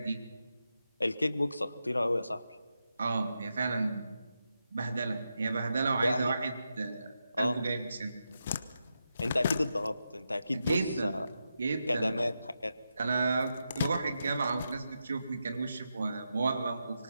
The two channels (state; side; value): inverted; both; correlation -0.87